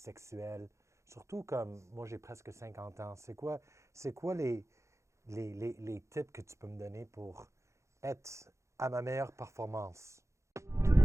Surtout comme moi, j'ai presque 50 ans. C'est quoi les tips que tu peux me donner pour être à ma meilleure performance?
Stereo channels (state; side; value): late; left; 0.14 ms